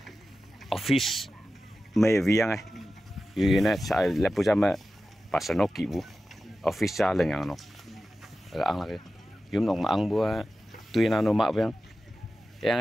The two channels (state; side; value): normal; both; correlation 0.94